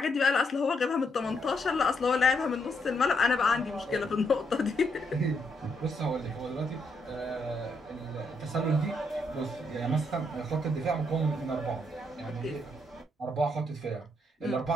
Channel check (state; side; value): normal; both; correlation 0.76